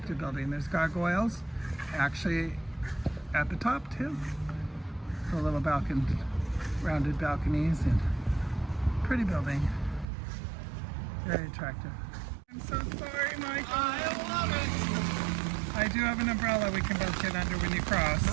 building. There's gargoyles actually at the top too. The little rounded balconies, and pretty building. Very attractive. I'm so sorry, Michael. I love it. I do have an umbrella we can both get under when you cross.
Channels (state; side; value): drops out; left; at 10.1 s